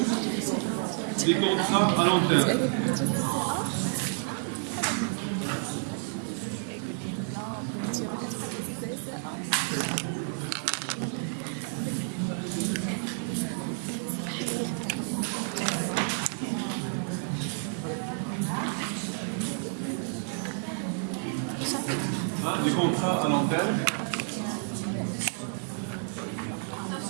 des contrats à long terme. Des contrats à long terme.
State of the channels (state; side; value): silent; left; 58 dB below the other